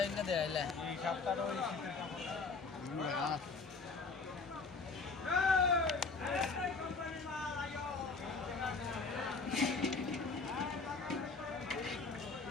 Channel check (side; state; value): right; quieter; 4.2 dB